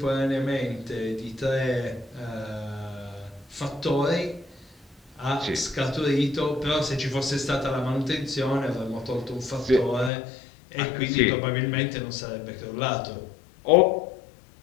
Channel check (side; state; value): right; drops out; at 10.1 s